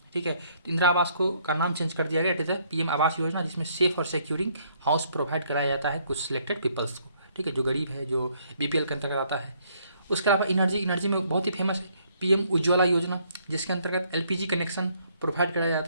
ठीक है। तो इंदिरा आवास को का नाम चेंज कर दिया गया, it is PM Awas Yojana, जिसमें सेफ और सिक्योरिंग हाउस प्रोवाइड कराया जाता है कुछ सिलेक्टेड पीपल्स को, ठीक है, जो गरीब है, जो बीपीएल के अंतर्गत आता है। उसके अलावा एनर्जी में बहुत ही फेमस है पीएम उज्ज्वला योजना, जिसके अंतर्गत एलपीजी कनेक्शन प्रोवाइड कराया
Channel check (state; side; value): inverted; both; correlation -0.67